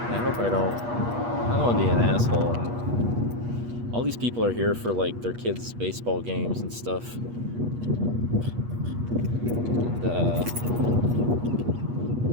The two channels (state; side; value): late; left; 8.4 ms